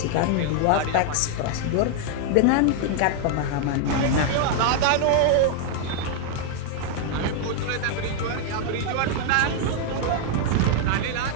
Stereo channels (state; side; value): different; both; correlation 0.00